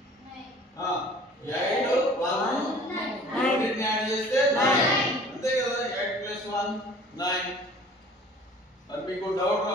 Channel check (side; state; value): both; normal; correlation 0.49